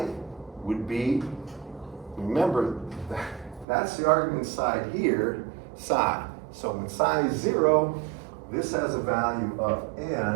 would be, remember, that's the argument side here, psi. So when psi is 0, this has a value of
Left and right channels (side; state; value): left; drops out; at 3.7 s